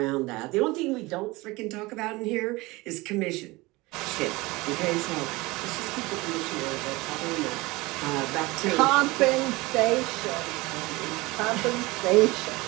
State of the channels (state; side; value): quieter; left; 22.1 dB